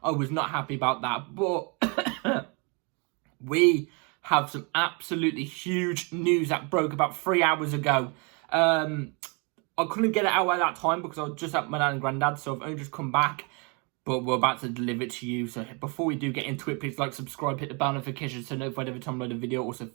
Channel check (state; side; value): quieter; left; 32.5 dB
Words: I was not happy about that. But we have some absolutely huge news that broke about 3 hours ago. I couldn't get it out at that time because I was just at my dad and granddad, so I've only just come back. But we're about to deliver it to you. So before we do get into it, please like, subscribe, hit the bell notification so notified every time I load a video. Also,